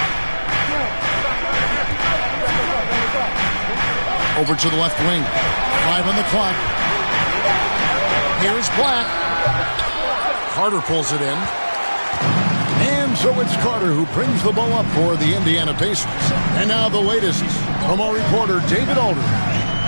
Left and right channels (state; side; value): inverted; both; correlation -1.00